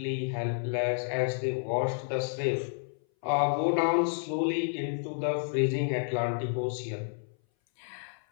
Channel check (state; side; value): silent; right; 58 dB below the other